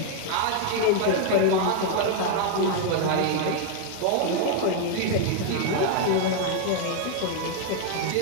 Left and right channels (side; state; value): both; different; correlation 0.00